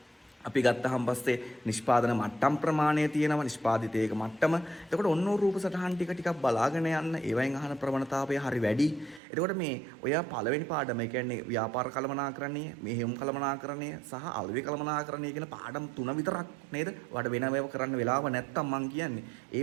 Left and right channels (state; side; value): drops out; left; at 9.2 s